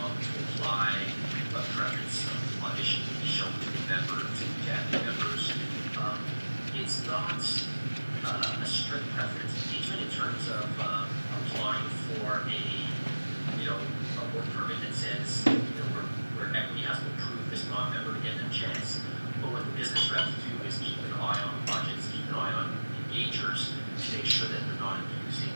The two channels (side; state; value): both; inverted; correlation -1.00